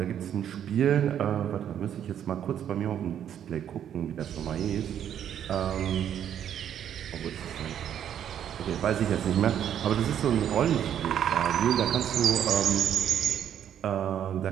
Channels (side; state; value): left; quieter; 9.7 dB